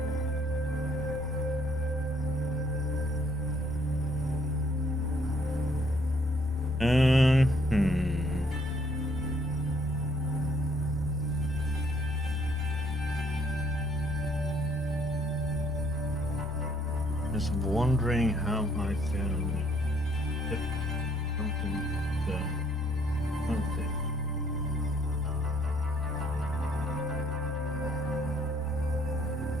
Just wondering how I can get something something.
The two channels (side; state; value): both; normal; correlation 0.66